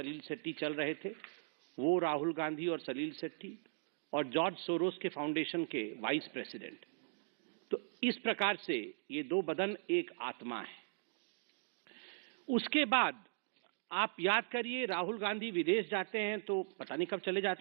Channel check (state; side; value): silent; left; digital silence